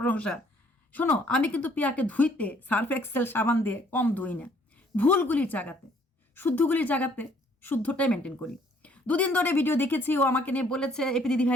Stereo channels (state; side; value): normal; both; correlation 0.63